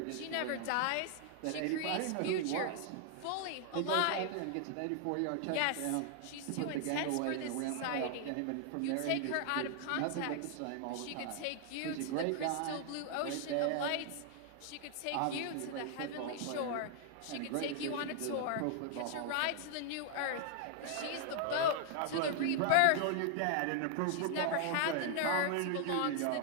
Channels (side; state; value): both; different; correlation 0.00